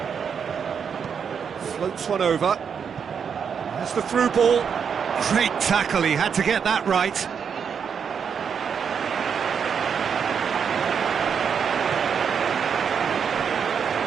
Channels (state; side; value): quieter; left; 6.9 dB